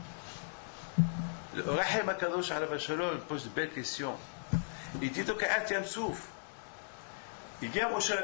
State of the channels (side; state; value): right; silent; 53 dB below the other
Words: Le Rahim Akadosh Alav Shalom pose une belle question. Il dit donc à Atiam Souf, Il vient Moshe